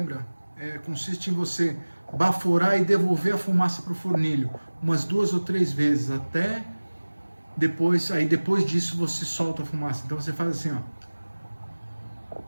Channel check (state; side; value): inverted; both; correlation -1.00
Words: consiste em você baforar e devolver a fumaça para o fornilho umas 2 ou 3 vezes, até depois, aí depois disso você solta a fumaça. Então você faz assim, ó.